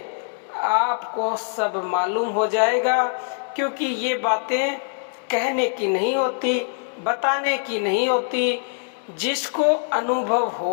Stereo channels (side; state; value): right; silent; 63 dB below the other